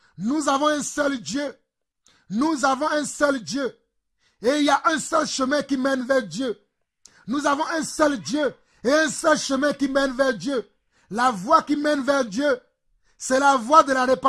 Nous avons un seul Dieu. Nous avons un seul Dieu. Et il y a un seul chemin qui mène vers Dieu. Nous avons un seul Dieu et un seul chemin qui mène vers Dieu. La voie qui mène vers Dieu, c'est la voie de la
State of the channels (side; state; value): both; identical; correlation 1.00